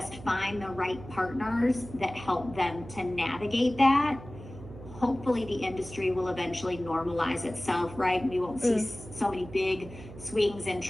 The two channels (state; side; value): noise; right; hum, 15 dB below the sound